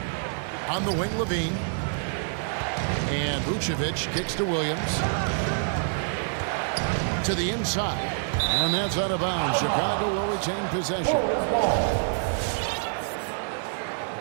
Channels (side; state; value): left; silent; digital silence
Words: On the wing, Levine. And Vucevic kicks to Williams. To the inside. And that's out of bounds. Chicago will retain possession.